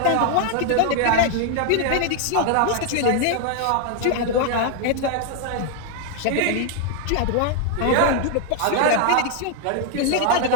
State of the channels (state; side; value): different; both; correlation 0.00